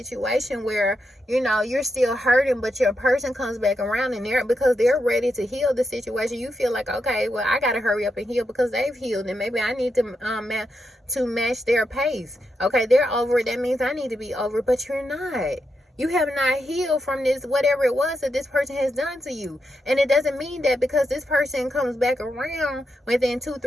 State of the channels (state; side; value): normal; both; correlation 0.84